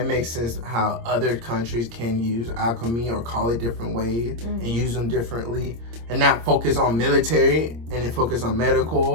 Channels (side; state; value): left; late; 26 ms